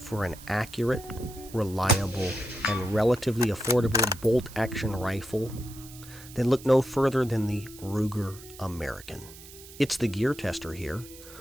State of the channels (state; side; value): noise; right; hiss, 18 dB below the sound